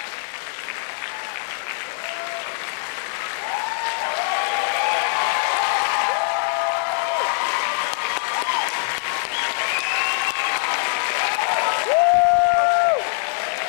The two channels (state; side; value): silent; right; digital silence